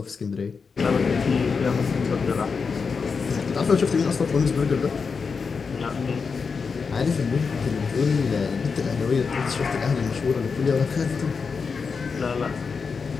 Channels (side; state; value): right; quieter; 5.3 dB